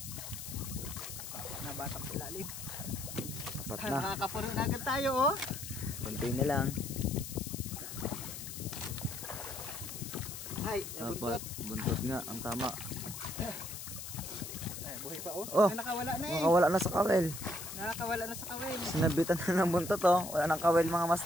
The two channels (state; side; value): noise; left; hiss, 9 dB below the sound